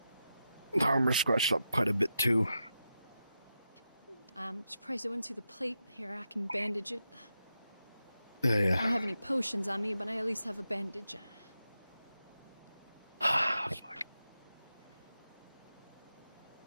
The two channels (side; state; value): both; inverted; correlation -0.88